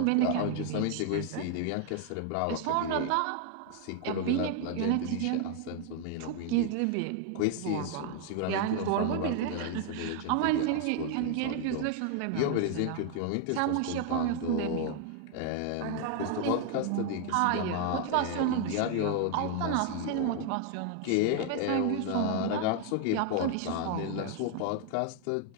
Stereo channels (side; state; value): both; different; correlation 0.00